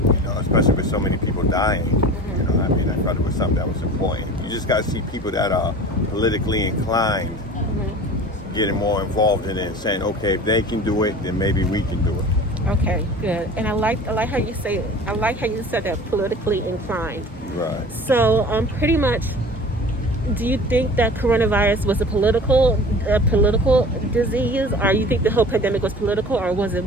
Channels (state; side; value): normal; both; correlation 0.40